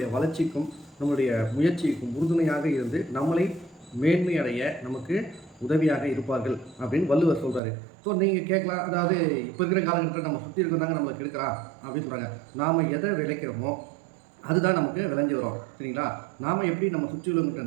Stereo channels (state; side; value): drops out; left; at 7.6 s